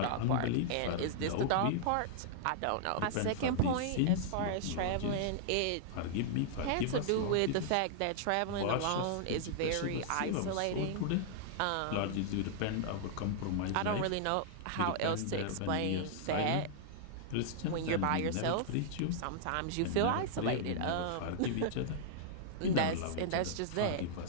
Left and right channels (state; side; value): different; both; correlation -0.01